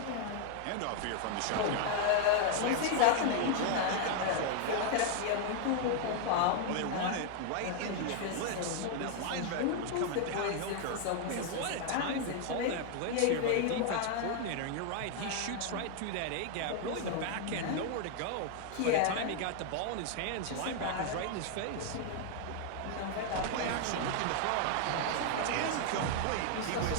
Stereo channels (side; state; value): both; different; correlation 0.00